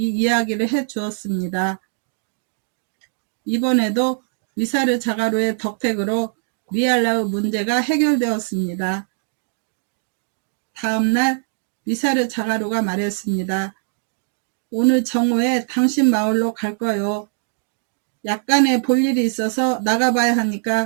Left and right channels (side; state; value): left; silent; 65 dB below the other